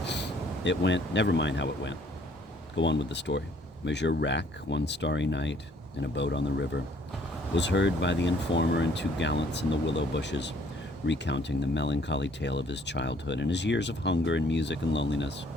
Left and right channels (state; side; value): normal; both; correlation 0.62